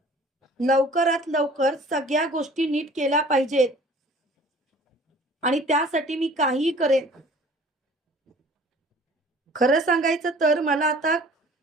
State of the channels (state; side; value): normal; both; correlation 0.49